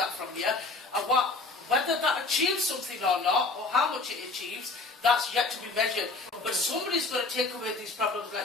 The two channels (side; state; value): right; quieter; 3.5 dB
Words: from you. And whether that achieves something or not, or how much it achieves, that's yet to be measured. But somebody's got to take away these problems